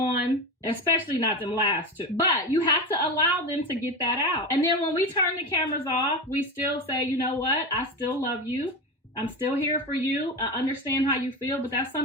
especially not them last two. But you have to allow them to get that out. And then when we turn the cameras off, we still say, you know what? I still love you. I'm still here for you. I understand how you feel, but that's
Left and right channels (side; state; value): both; normal; correlation 0.22